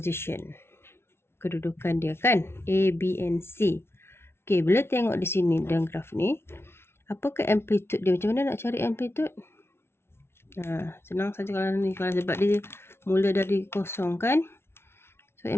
Kedudukan dia kan, A, B and C. Okay, bila tengok di sini dalam graf ni, apakah amplitude dia? Macam mana nak cari amplitude? Senang saja kalau ni, kalau sebab dia mula dari kosong kan. So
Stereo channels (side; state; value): right; late; 0.12 ms